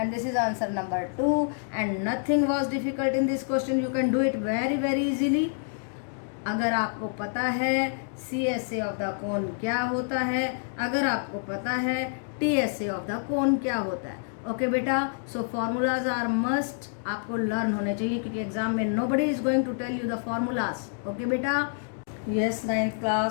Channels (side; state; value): right; silent; digital silence